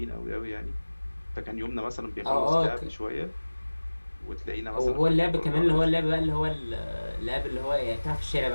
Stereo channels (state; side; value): inverted; both; correlation -1.00